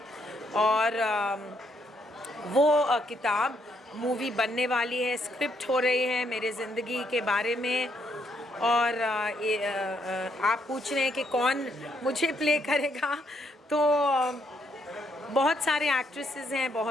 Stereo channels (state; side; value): normal; both; correlation 0.74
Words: और वो किताब मूवी बनने वाली है, स्क्रिप्ट हो रही है मेरे ज़िंदगी के बारे में। और आप पूछ रहे हैं कि कौन मुझे प्ले करेगा, तो बहुत सारे एक्ट्रेसेस हैं,